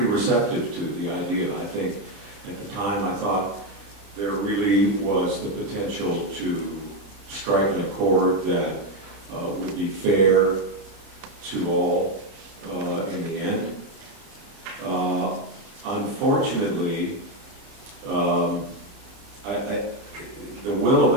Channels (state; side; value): late; left; 30 ms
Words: receptive to the idea. I think at the time I thought there really was the potential to strike an accord that would be fair to all in the end. Unfortunately, the will